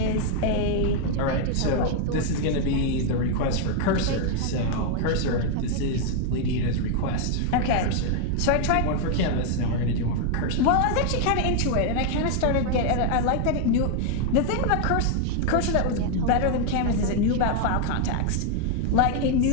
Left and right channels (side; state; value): both; different; correlation 0.00